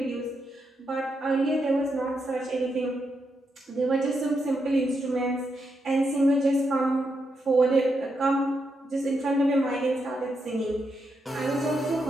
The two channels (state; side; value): normal; both; correlation 0.83